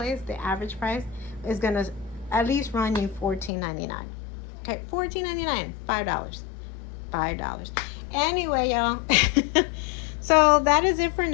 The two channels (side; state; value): right; drops out; at 3.5 s